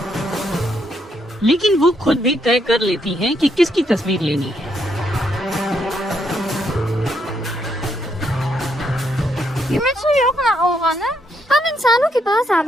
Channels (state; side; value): normal; both; correlation 0.76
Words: लेकिन वो खुद भी तय कर लेती हैं कि किसकी तस्वीर लेनी है। हम इंसानों के पास